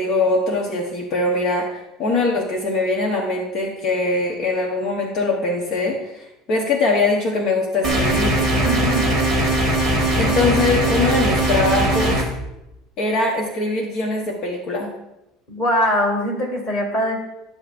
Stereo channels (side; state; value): both; normal; correlation 0.32